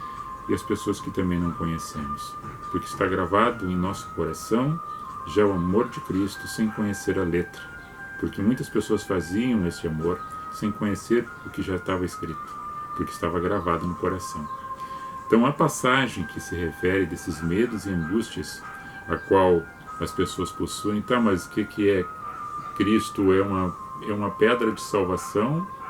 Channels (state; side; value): identical; both; correlation 1.00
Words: e as pessoas que também não conhecemos. Porque está gravado em nosso coração já o amor de Cristo sem conhecer a letra. Porque muitas pessoas faziam esse amor sem conhecer o que já estava escrito, porque estava gravado no coração. Então a passagem que se refere desses medos e angústias a qual as pessoas possuem, tá, mas o que é Cristo? É uma pedra de salvação